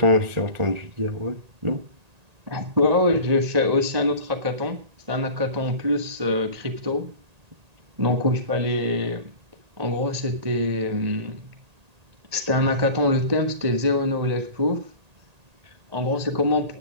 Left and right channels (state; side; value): late; left; 1.8 ms